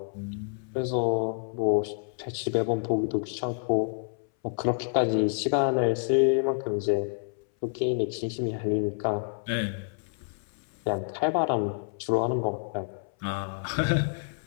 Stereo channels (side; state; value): right; silent; 59 dB below the other